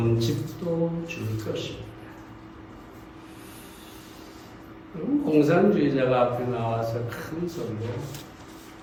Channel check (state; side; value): identical; both; correlation 1.00